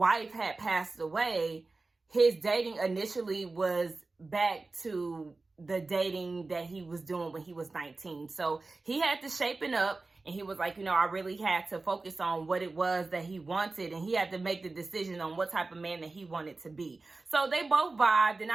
had passed away, his dating initially was back to the dating that he was doing when he was 19. So he had to shapen up. And he was like, you know, I really had to focus on what it was that he wanted. And he had to make the decision on what type of man that he wanted to be. So they both vibed. And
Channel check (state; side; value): quieter; left; 3.5 dB